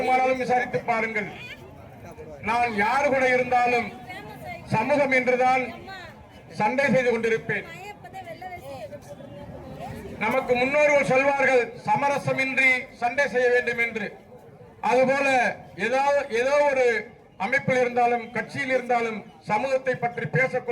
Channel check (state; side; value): identical; both; correlation 1.00